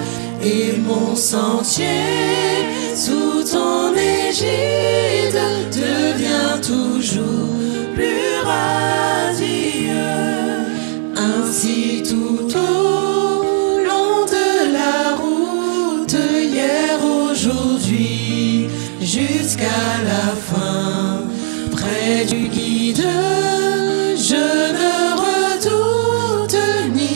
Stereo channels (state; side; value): silent; left; digital silence